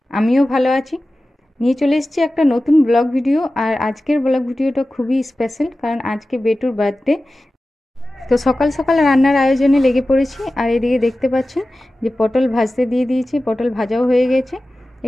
আমিও ভালো আছি। নিয়ে চলে এসেছি একটা নতুন ব্লগ ভিডিও। আর আজকের ব্লগ ভিডিওটা খুবই স্পেশাল, কারণ আজকে বেটুর বার্থডে। তো সকাল সকাল রান্নার আয়োজনে লেগে পড়েছি। আর এদিকে দেখতে পাচ্ছেন যে পটল ভাজতে দিয়ে দিয়েছি, পটল ভাজাও হয়ে গেছে।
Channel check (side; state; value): both; normal; correlation 0.95